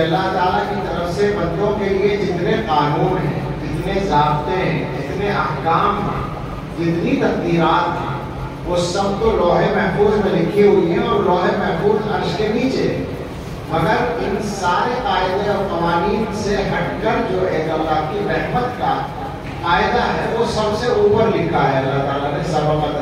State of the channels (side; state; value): both; identical; correlation 1.00